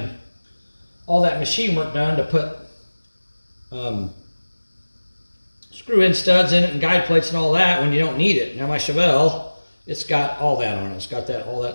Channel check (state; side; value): inverted; both; correlation -1.00